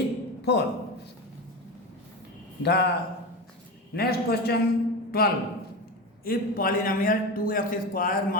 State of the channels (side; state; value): both; normal; correlation 0.22